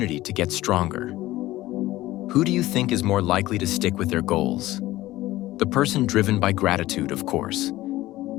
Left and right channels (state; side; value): quieter; right; 16.6 dB